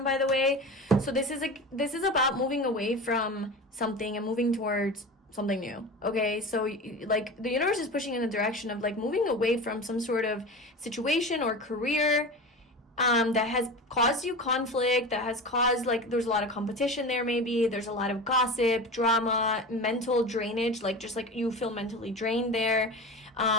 by the way. So this is about moving away from something and moving towards something new. Okay, so like the universe is pushing in the direction of like moving away from some sort of situation or career that has caused you conflict, that has caused, like, there's a lot of competition there, maybe there's a lot of gossip, drama, mental drainage, like just like you feel mentally drained there,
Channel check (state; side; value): normal; both; correlation 0.30